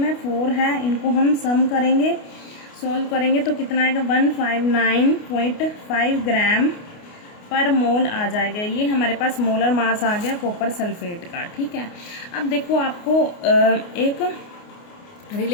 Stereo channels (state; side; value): late; right; 29 ms